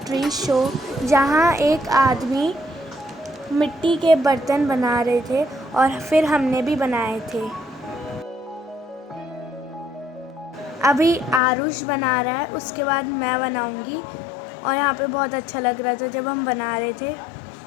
शो, जहाँ एक आदमी मिट्टी के बर्तन बना रहे थे और फिर हमने भी बनाए थे। अभी आरुष बना रहा है, उसके बाद मैं बनाऊंगी। और यहाँ पे बहुत अच्छा लग रहा था जब हम बना रहे थे।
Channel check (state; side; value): drops out; right; at 11.4 s